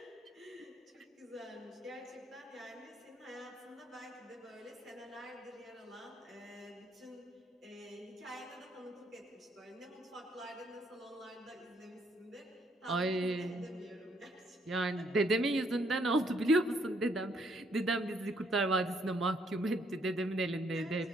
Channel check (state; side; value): normal; both; correlation 0.70